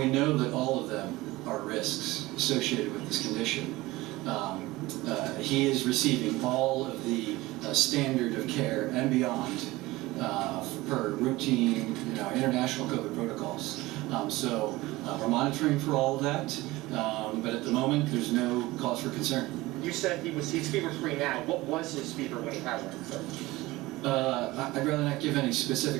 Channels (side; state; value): left; quieter; 19.6 dB